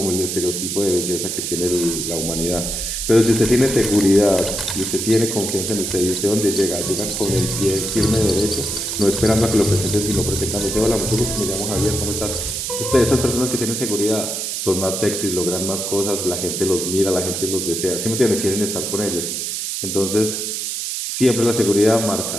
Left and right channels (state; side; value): noise; right; hiss, 3 dB below the sound